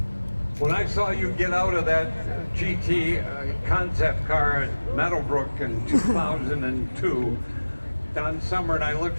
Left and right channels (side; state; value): both; inverted; correlation -1.00